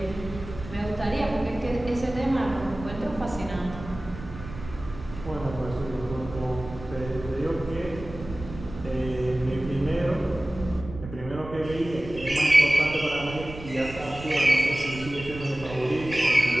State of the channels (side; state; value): right; noise; rumble, 13 dB below the sound